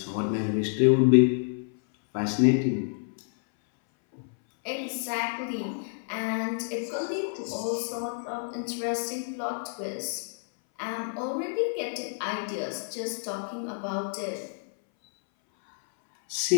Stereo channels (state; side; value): silent; right; 59 dB below the other